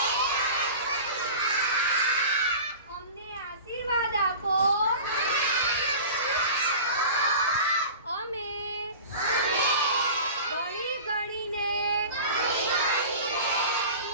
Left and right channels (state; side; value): inverted; both; correlation -0.37